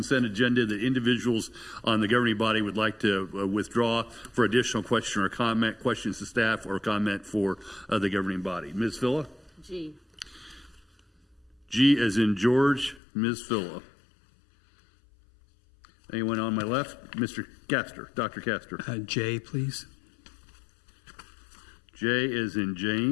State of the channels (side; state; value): right; drops out; at 13.0 s